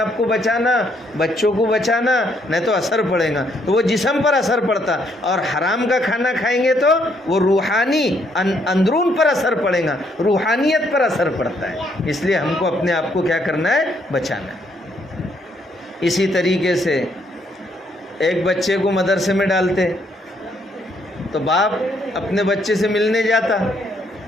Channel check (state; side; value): normal; both; correlation 0.71